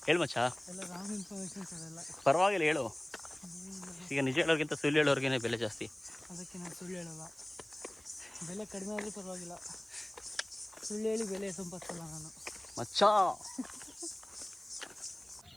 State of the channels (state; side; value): noise; right; hiss, 26 dB below the sound